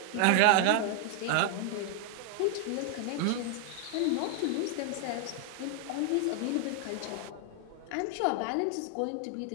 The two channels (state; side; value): different; both; correlation 0.00